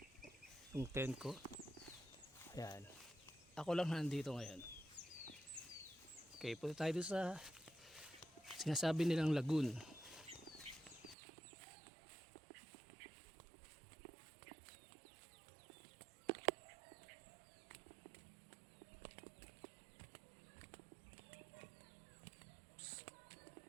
yung tent ko. Ayan, ako lang nandito ngayon. Okay, punta tayo doon sa sinasabi nilang lagoon.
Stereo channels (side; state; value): left; drops out; at 11.2 s